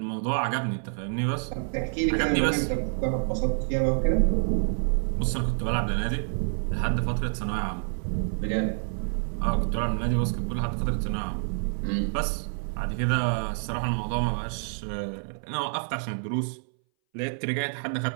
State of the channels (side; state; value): left; silent; 60 dB below the other